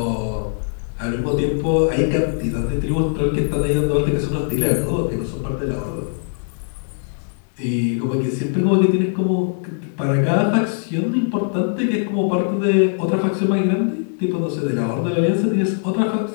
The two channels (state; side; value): silent; right; digital silence